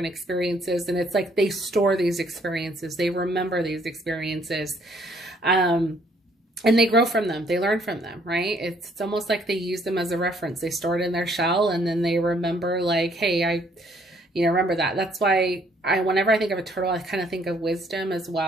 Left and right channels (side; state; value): both; normal; correlation 0.65